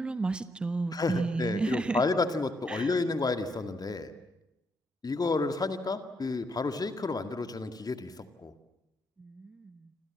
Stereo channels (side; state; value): both; normal; correlation 0.76